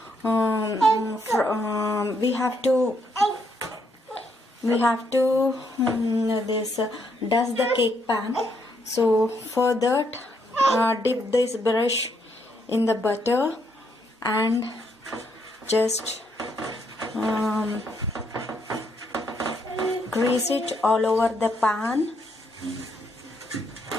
dust the cake pan. So for that, dip this brush in the butter and just grease it all over the pan.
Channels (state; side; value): normal; both; correlation 0.74